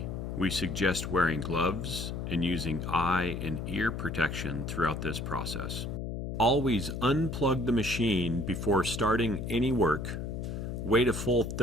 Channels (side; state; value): left; noise; hum, 5 dB below the sound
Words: we suggest wearing gloves and using eye and ear protection throughout this process. Always unplug the machine before starting any work. Wait a full